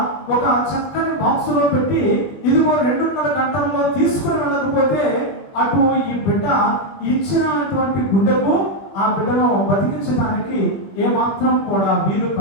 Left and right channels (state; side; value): late; right; 21 ms